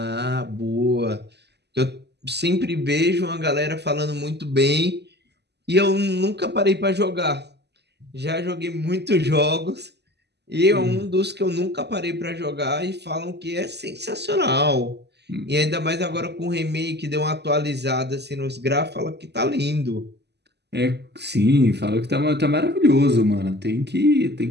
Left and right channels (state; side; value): late; left; 0.49 ms